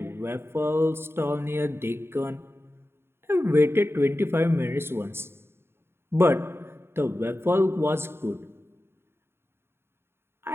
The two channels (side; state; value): left; late; 0.11 ms